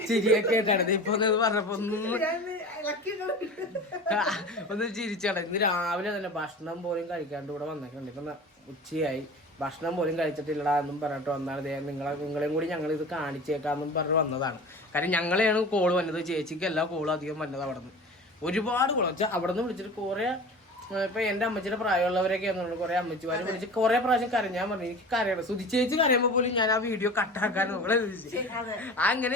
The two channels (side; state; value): both; normal; correlation 0.36